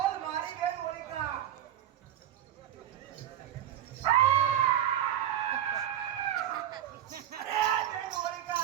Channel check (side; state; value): left; quieter; 11.4 dB